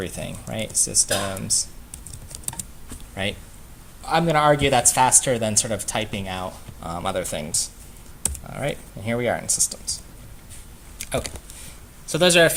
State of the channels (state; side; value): identical; both; correlation 1.00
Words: right? Systems, right? I'm going to argue that's faster than sort of typing out other things. All right, and here we are in systems. Okay. So those are a